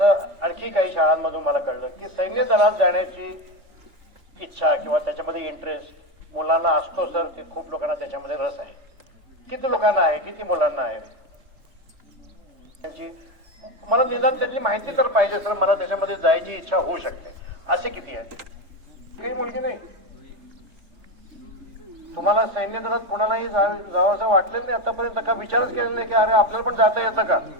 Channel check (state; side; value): late; left; 3.5 ms